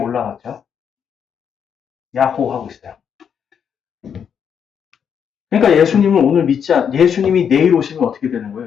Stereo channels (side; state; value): right; quieter; 7.7 dB